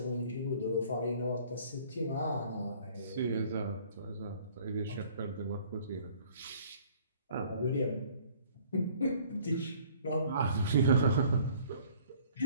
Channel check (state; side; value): inverted; both; correlation -0.55